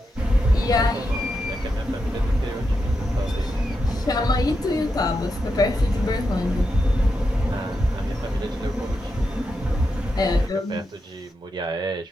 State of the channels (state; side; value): normal; both; correlation 0.86